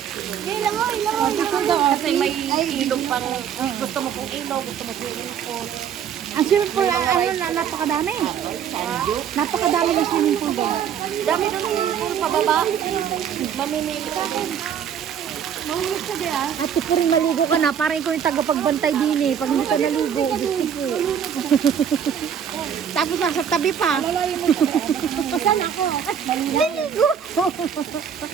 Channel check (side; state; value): left; quieter; 8.4 dB